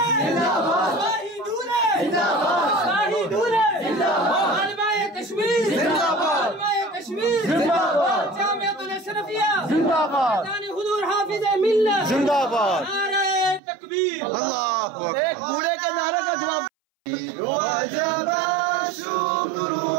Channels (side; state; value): left; drops out; at 13.6 s